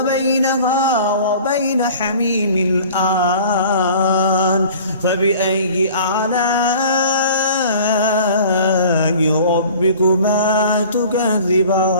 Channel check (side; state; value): both; inverted; correlation -0.45